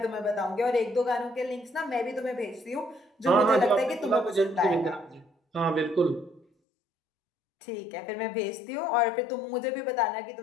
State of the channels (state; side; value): drops out; right; at 6.5 s